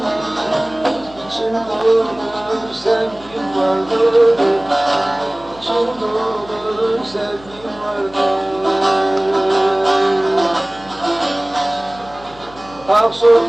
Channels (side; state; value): left; noise; hum, 22 dB below the sound